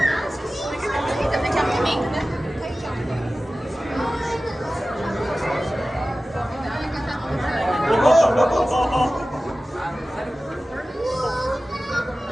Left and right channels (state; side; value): normal; both; correlation 0.96